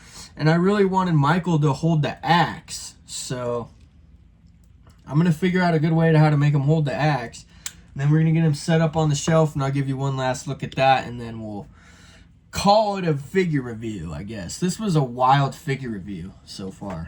And I really wanted Micheal to hold the axe, so I'm going to figure out a good way to how to make him hold the axe. And then we're going to get him set up on the shelf, and I'll give you one last look at that, and then we'll call it a figure review, I guess. This was a wild figure review so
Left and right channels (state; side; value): identical; both; correlation 1.00